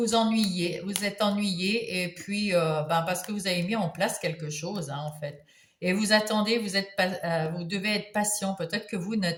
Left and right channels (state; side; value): identical; both; correlation 1.00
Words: ennuyez, vous êtes ennuyé, et puis parce que vous avez mis en place quelque chose, hein, en fait. Et vous attendez, vous devez être patient. Peut-être que vous